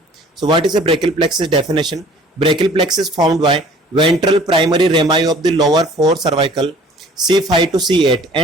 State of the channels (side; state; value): both; normal; correlation 0.51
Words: So what is a brachial plexus definition? Brachial plexus formed by ventral primary rami of the lower four cervical C5 to C8